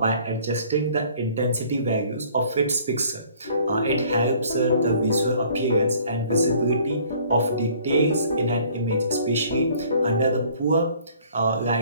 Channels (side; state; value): both; inverted; correlation -0.55